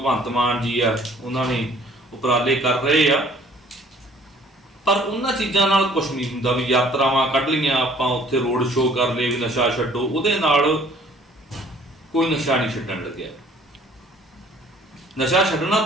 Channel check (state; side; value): normal; both; correlation 0.55